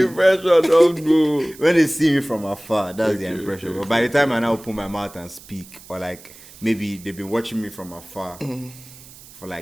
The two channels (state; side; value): noise; right; hiss, 20 dB below the sound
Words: impression don't go. When they see me from afar, that's the impression. Okay. But by the time I now open my mouth and speak, or like maybe they've been watching me from afar for